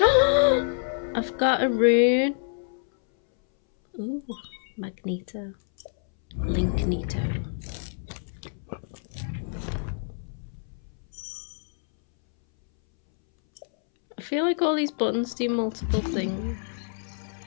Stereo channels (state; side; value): silent; right; 60 dB below the other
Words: I've got a rune. Ooh, Magneto. Linkneto. I feel like all these buttons do multiple things.